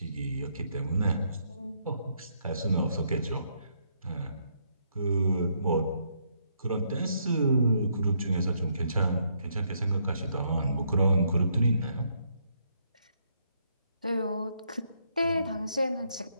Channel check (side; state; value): both; inverted; correlation -0.74